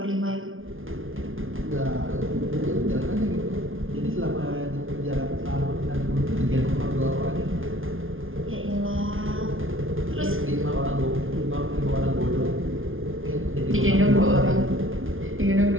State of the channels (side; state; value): left; late; 0.59 ms